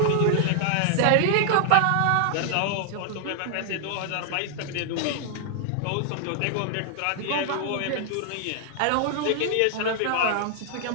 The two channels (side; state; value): both; different; correlation -0.01